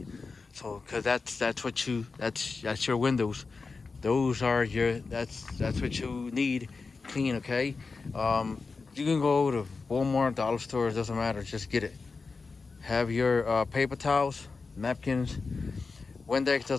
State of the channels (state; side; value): quieter; right; 4.4 dB